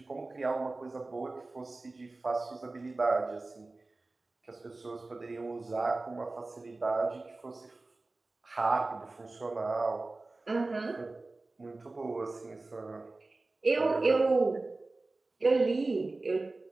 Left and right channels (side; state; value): left; quieter; 3.3 dB